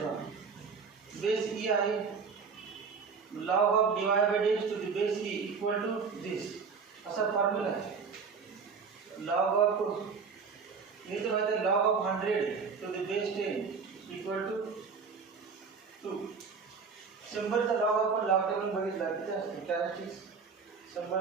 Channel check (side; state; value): left; quieter; 5.4 dB